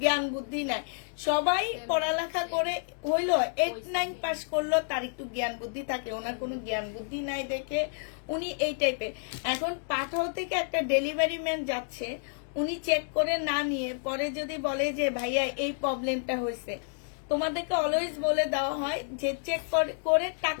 জ্ঞান বুদ্ধি নাই। সবাই পড়ালেখা করে হইলো 8-9 পাস করলো, তার একটু জ্ঞান বুদ্ধি থাকে, ওনার কোনো জ্ঞান বুদ্ধি নাই দেখে উনি এই টাইপের। এখন পাঠাও থেকে একটা ডেলিভারি ম্যান যাচ্ছে, উনি চেক করে না নিয়ে পরে যদি বলে যে ভাইয়া এই প্রবলেমটা হয়েছে, তোমাদেরকে অলওয়েজ বলে দেওয়া হয় যে চেক করে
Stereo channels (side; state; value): right; silent; digital silence